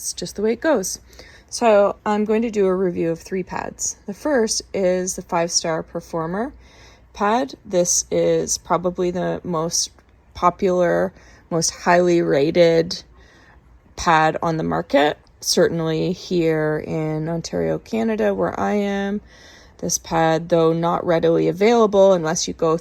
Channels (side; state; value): both; identical; correlation 1.00